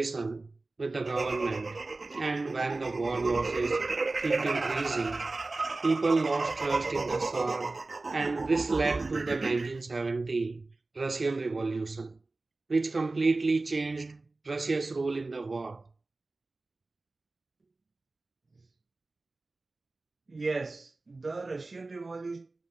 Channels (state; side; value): quieter; left; 3.3 dB